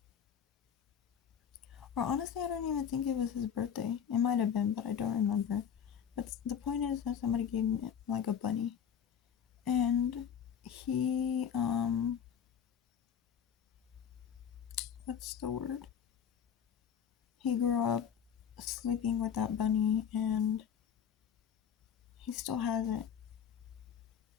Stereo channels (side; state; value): right; quieter; 8.2 dB